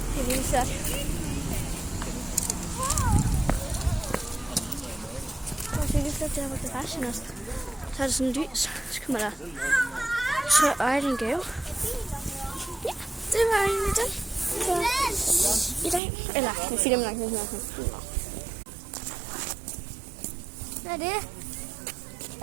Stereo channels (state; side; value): drops out; left; at 16.0 s